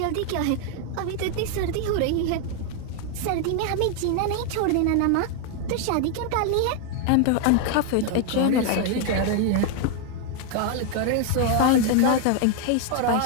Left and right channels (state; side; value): different; both; correlation 0.01